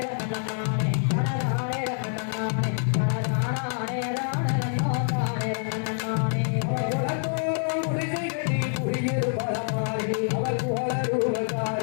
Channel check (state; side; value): silent; right; 61 dB below the other